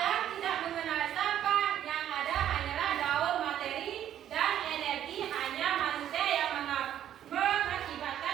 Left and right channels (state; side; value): quieter; left; 10.9 dB